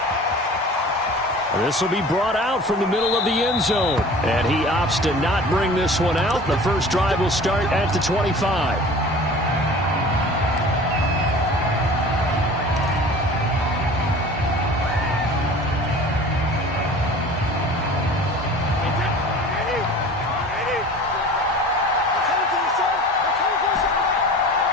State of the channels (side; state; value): both; normal; correlation 0.42